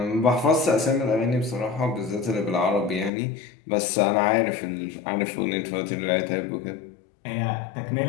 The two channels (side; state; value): right; drops out; at 3.1 s